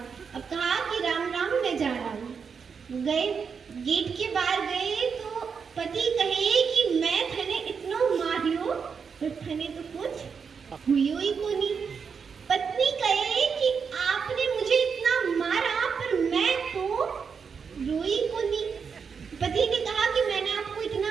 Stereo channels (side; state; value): left; quieter; 6.1 dB